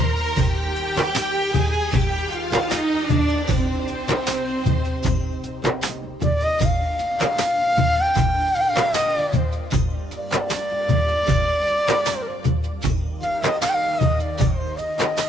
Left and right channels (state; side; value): normal; both; correlation 0.74